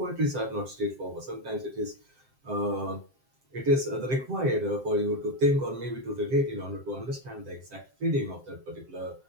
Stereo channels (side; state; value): left; late; 7.7 ms